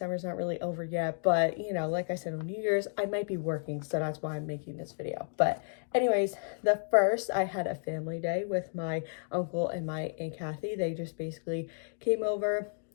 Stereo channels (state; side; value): silent; right; digital silence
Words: not really over yet, but you know, like I said, on New Year's, I might be working, so that's why I'm making this video. But anyways, the first, I had a family day with my uncle and my Aunt Kathy. They just basically came over,